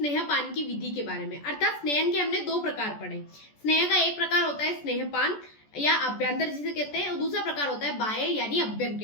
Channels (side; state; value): right; late; 14 ms